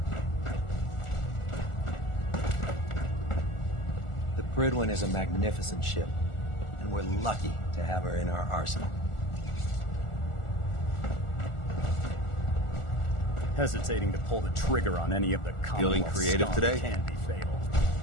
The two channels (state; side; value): late; right; 1.4 ms